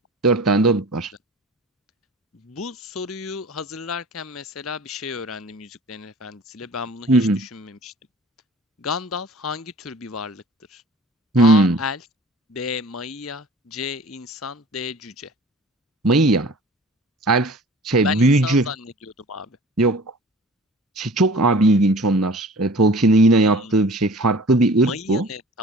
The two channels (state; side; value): normal; both; correlation 0.45